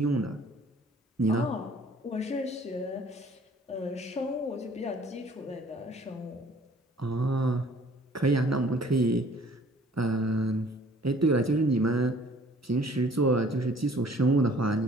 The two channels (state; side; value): normal; both; correlation 0.54